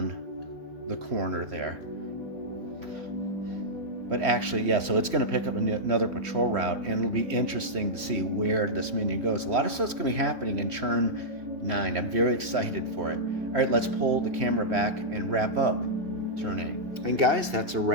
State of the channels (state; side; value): late; left; 2.8 ms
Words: the corner there. But actually, yeah, so it's going to pick up another patrol route, and it'll be interesting to see where this minion goes. A lot of stuff's going to be happening in turn 9. I'm very excited for it. All right, let's pull the camera back and wrap up turn 8. And guys, that's a